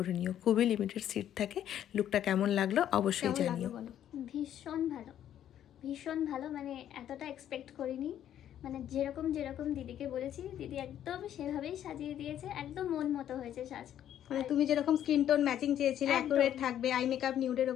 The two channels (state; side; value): quieter; right; 10.8 dB